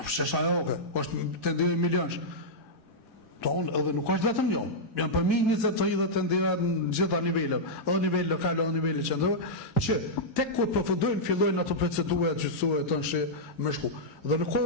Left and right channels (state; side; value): normal; both; correlation -0.08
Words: shajoke, është tenderë milionsh. Tonë edhe nuk është vetëm jo. Janë përmi 20-30 tenderat në gjitha nivellet, edhe nivel lokal, edhe nivel qendror, që tek kur përfundojnë fillojnë ato procedura gjyqësore të nshi me shku. Dhe nuk